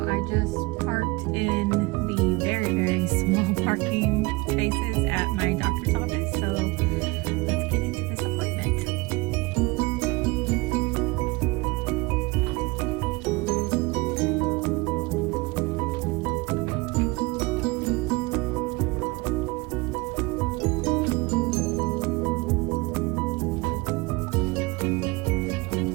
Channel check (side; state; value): left; quieter; 24.3 dB